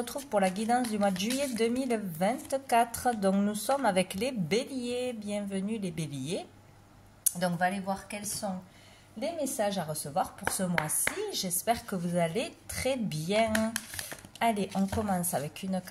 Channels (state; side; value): identical; both; correlation 1.00